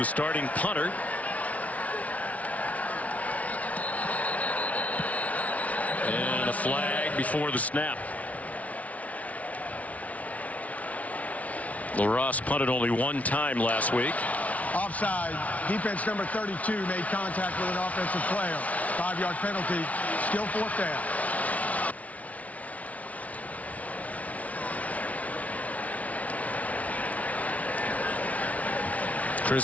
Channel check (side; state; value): right; late; 0.068 ms